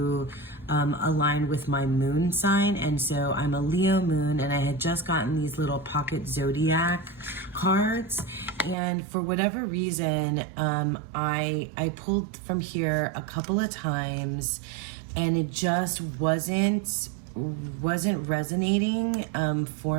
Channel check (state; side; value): drops out; left; at 8.8 s